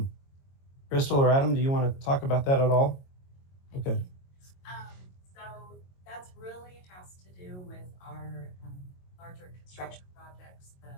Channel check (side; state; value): right; late; 22 ms